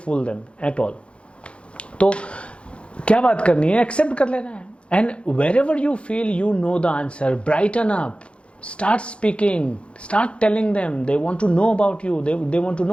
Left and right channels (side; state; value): right; late; 0.059 ms